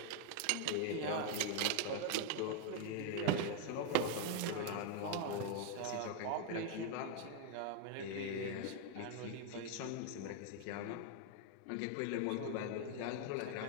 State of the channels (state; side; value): different; both; correlation 0.01